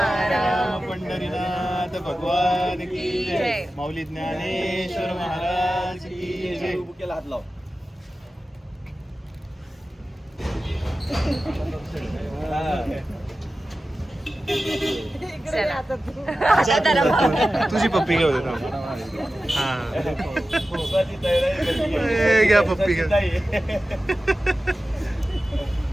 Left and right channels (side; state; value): both; normal; correlation 0.94